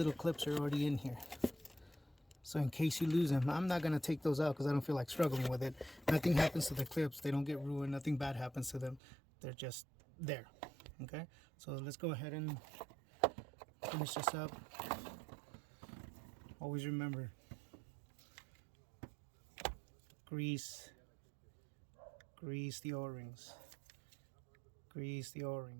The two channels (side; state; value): left; drops out; at 9.0 s